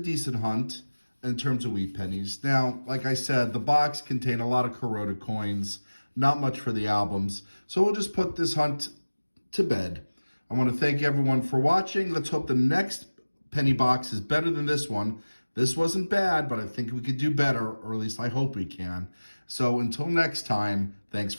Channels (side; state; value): both; inverted; correlation -1.00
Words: hunt in terms of wheat pennies. Now, like I said, the box contained a lot of corroded coins, not much for the albums. So we'll just put this hunt to bed. I want to thank everyone for watching. Let's hope the next penny box is better than this one. This wasn't bad, but I think we could do better, or at least I hope we can. So until next time, thanks